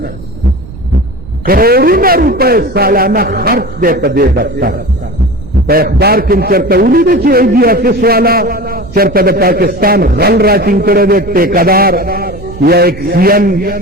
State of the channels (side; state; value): right; noise; rumble, 17 dB below the sound